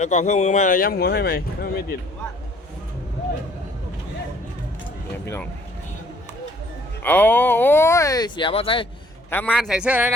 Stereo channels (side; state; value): both; normal; correlation 0.59